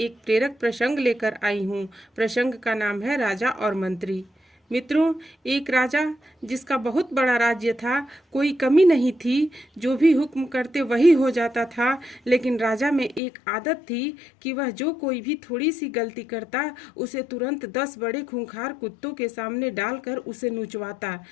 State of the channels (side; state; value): right; drops out; at 13.2 s